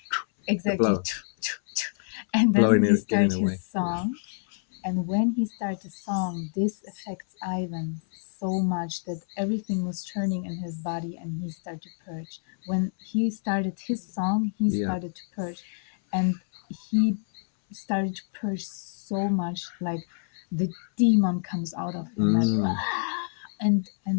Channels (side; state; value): right; silent; 60 dB below the other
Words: exactly. And then he starts his song, and when he starts the song, this affects Ivan so much that everything was turning in his body, and he started to purge. When he started his song, he started to purge, and he started to purge so much, like the demon comes out of him, like, and